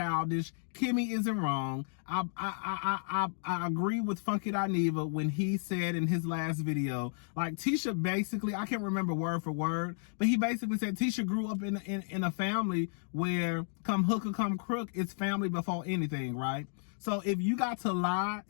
Kimmy isn't wrong. I agree with Funky Dineva when he said in his last video, like, Tisha basically, I can't remember word for word, but he basically said Tisha grew up in a family where come hook or come crook, it's family before anything, right? So if you got to lie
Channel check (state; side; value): silent; right; digital silence